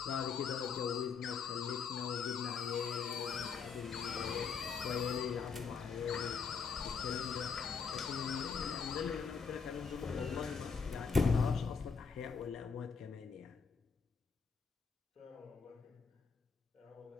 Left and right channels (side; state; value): right; quieter; 5.7 dB